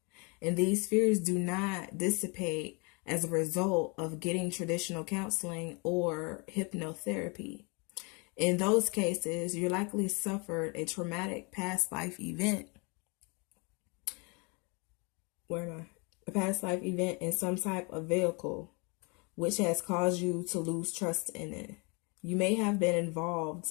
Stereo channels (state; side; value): quieter; right; 31.3 dB